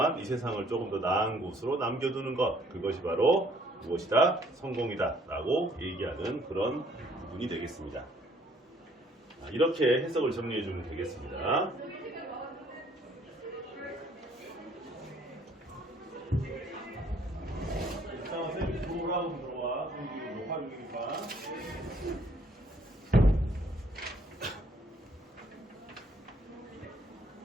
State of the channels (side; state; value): both; normal; correlation 0.62